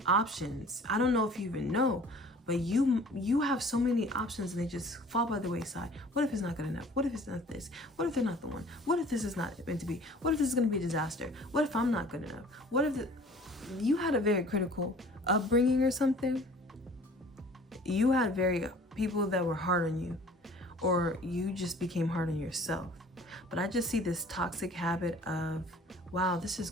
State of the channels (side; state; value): both; normal; correlation 0.49